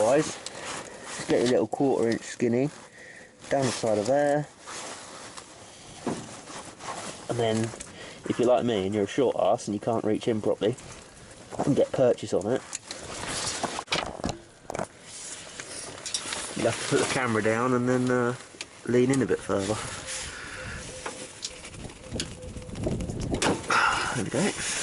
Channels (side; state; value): both; identical; correlation 1.00